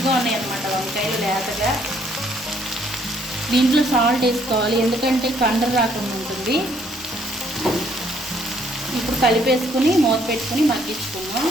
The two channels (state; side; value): normal; both; correlation 0.66